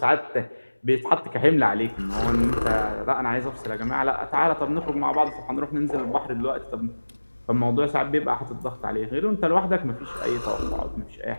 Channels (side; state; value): both; inverted; correlation -1.00